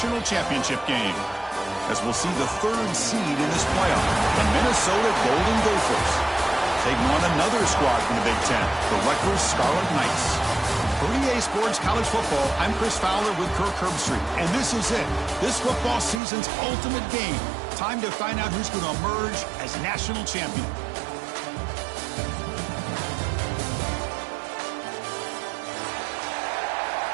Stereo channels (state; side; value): drops out; left; at 16.2 s